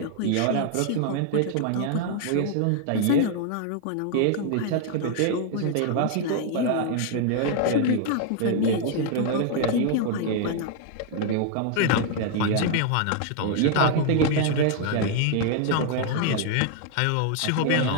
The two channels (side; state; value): both; different; correlation 0.00